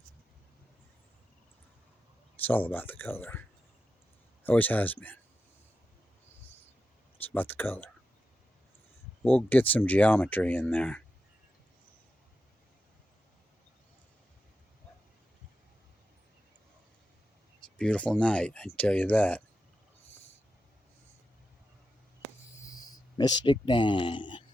It's all about the color. Always has been. It's about the color. We'll get some geometry in there. It's a beautiful night, I can tell you that. Mystic Dan.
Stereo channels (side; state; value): both; normal; correlation 0.89